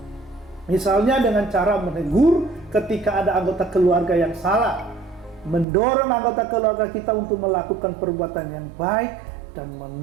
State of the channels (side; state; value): left; drops out; at 5.7 s